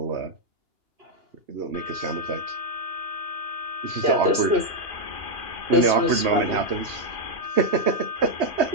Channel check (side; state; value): left; late; 2.9 ms